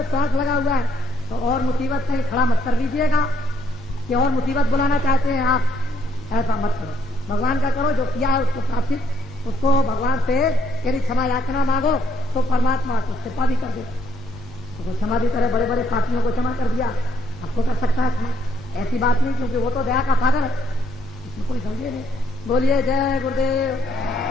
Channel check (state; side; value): normal; both; correlation 0.70